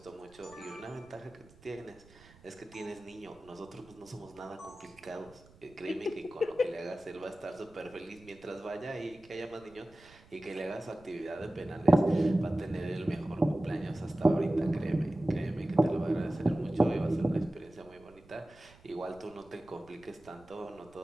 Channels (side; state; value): right; noise; rumble, 25 dB below the sound